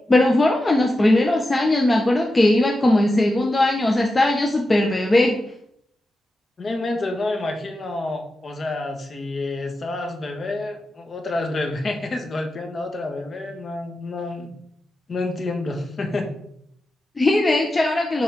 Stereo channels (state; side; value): normal; both; correlation 0.91